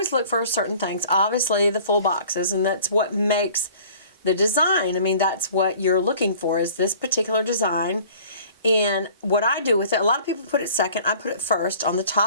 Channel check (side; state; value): both; inverted; correlation -0.49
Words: look for certain things. Obviously, the full boxes, and that's what makes the design. I mean, that's what you're looking for, is this particular design. And what I do with it, a lot of people put it second. I put it first on the